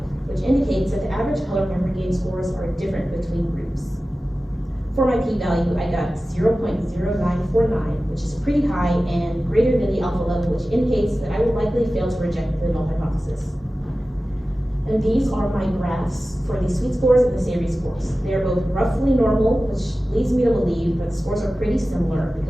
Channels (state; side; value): normal; both; correlation 0.95